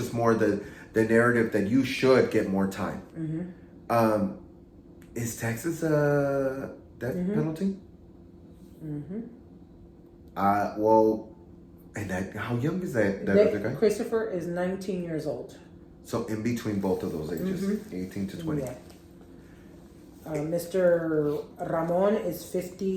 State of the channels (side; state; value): both; identical; correlation 1.00